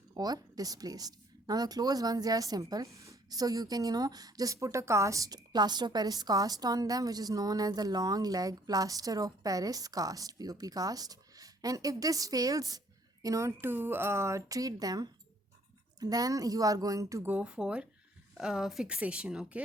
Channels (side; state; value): both; normal; correlation 0.62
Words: or displaced. Now the closed ones, they are simple, so you can just put a plaster of paris cast on them, which is known as the long leg plaster of paris cast, pop cast. And if this fails to treat them, then you are going to go for fixation,